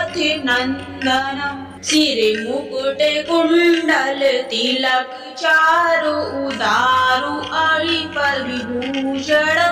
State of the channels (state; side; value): identical; both; correlation 1.00